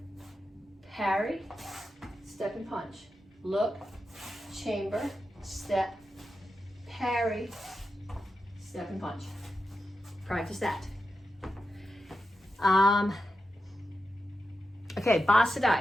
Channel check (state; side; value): normal; both; correlation 0.89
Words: parry, step and punch. Look, chamber, step, parry, step and punch. Practice that. Okay,